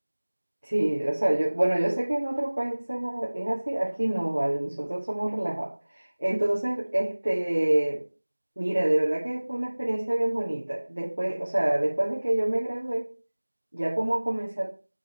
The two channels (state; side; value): inverted; both; correlation -1.00